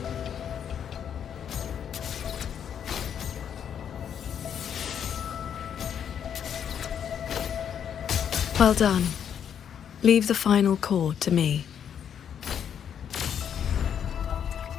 Well done. Leave the final core to me.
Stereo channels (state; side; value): quieter; right; 8.5 dB